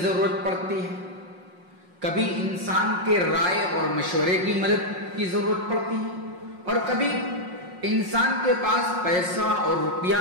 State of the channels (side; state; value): left; late; 5.5 ms